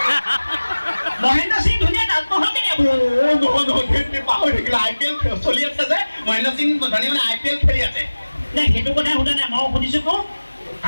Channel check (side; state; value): both; inverted; correlation -1.00